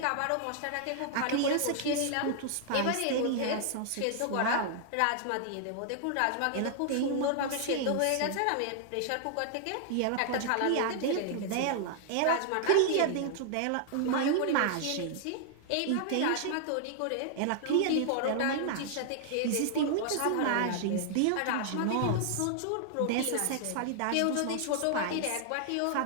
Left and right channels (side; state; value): both; different; correlation -0.01